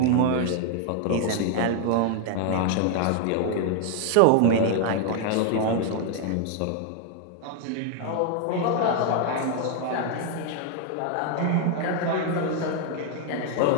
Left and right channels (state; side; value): different; both; correlation 0.00